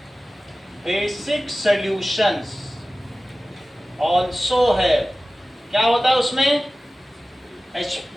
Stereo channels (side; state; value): both; normal; correlation 0.96